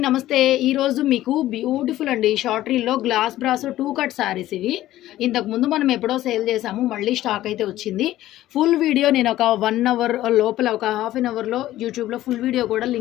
నమస్తే. ఈరోజు మీకు బ్యూటిఫుల్ అండి షార్ట్ రీల్లో గ్లాస్ బ్రాస్ 2 కట్ శారీస్ ఇవి. ఇంతకుముందు మనం ఎప్పుడో సేల్ చేసాము, మళ్ళీ స్టాక్ అయితే వచ్చింది. ఫుల్ వీడియో నేను ఒక 1 అవర్ లోపల, ఒక హాఫ్ అన్ అవర్లో యూట్యూబ్లో ఫుల్ వీడియో కూడా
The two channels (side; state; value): right; quieter; 14.6 dB